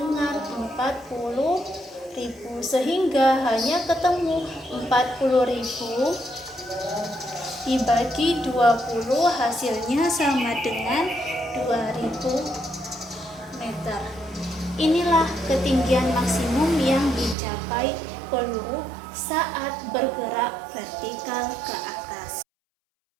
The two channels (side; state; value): left; drops out; at 17.4 s